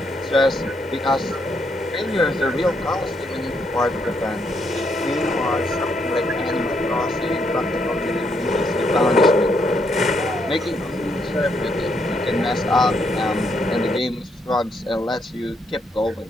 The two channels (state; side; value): normal; both; correlation 0.75